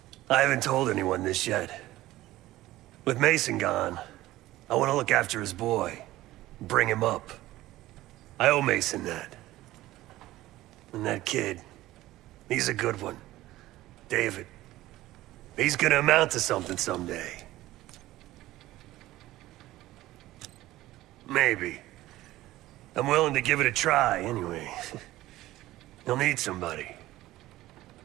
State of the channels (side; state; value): left; quieter; 16.3 dB